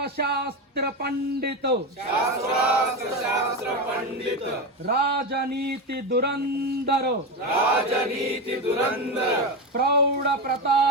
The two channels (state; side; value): normal; both; correlation 0.17